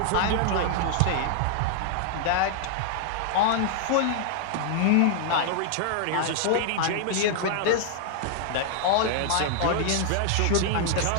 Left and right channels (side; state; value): both; different; correlation -0.01